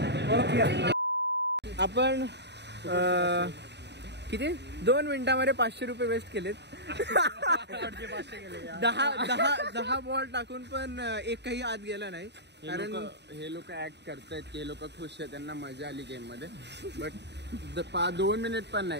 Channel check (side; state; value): left; late; 0.50 ms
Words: आपण किती 2 मिनिटांमध्ये 500 रुपये वेस्ट केलेत. 10 बॉल टाकून पण एकही आत गेला नाही. कारण हे लोक ऍक्ट करतायत की हे लोक खुश आहेत, त्यांना मजा आली गेम मध्ये. बट 2 मिनिट पण